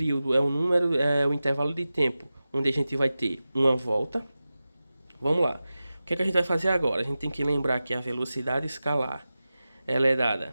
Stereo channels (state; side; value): inverted; both; correlation -0.95